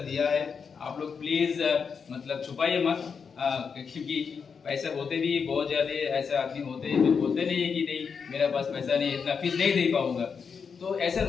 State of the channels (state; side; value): quieter; right; 6.0 dB